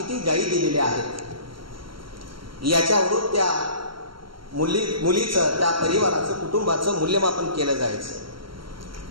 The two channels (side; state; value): left; late; 0.73 ms